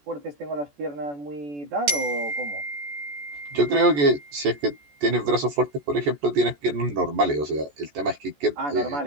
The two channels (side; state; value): left; late; 14 ms